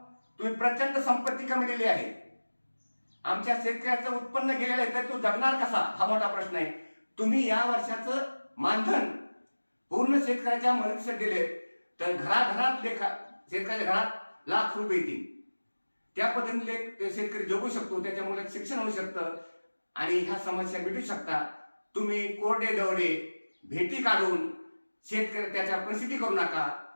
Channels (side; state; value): both; inverted; correlation -1.00